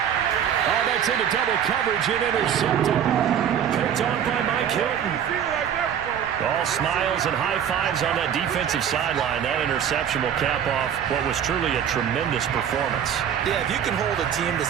that's into double coverage and intercepted. Picked on by Mike Hilton. All smiles and high fives on that defensive sideline. That interception will cap off what was truly a tremendous performance. Yeah, if you can hold a team to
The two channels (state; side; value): quieter; left; 8.9 dB